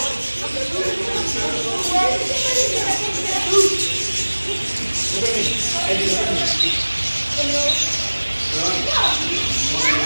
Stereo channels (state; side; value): inverted; both; correlation -1.00